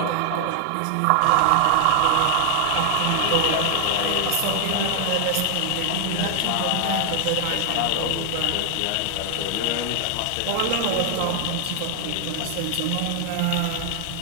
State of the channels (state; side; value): different; both; correlation 0.00